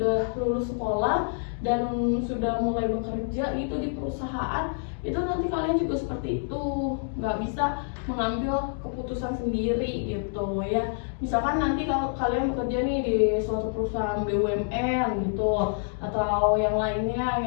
lulus sekolah dan sudah mulai bekerja gitu di perusahaan, itu nanti kalian juga seperti itu, nggak bisa mengambil keputusan sendiri gitu ya. Misalkan nanti kalau kalian bekerja nih di suatu perusahaan BUMN gitu, atau yang lainnya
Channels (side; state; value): right; silent; digital silence